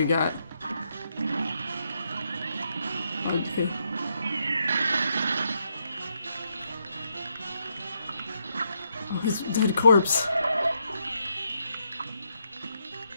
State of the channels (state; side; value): inverted; both; correlation -0.78